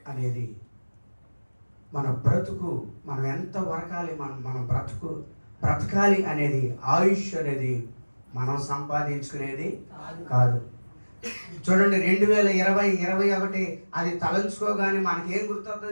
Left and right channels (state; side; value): inverted; both; correlation -1.00